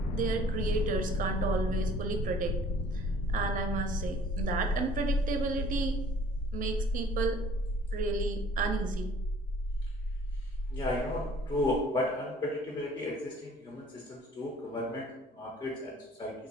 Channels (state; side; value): normal; both; correlation 0.54